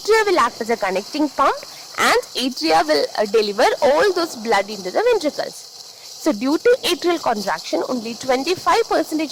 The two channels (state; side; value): identical; both; correlation 1.00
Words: will act as a connecting pump and atria will deliver all those blood into the ventricles. So due to atrial contraction, only 25%